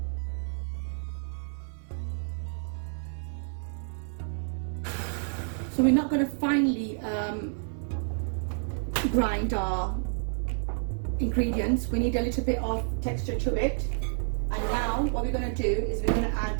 So we're not going to finely grind our ingredients. We need a little bit of texture to it. And now what we're going to do is we're going to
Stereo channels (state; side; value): silent; left; 58 dB below the other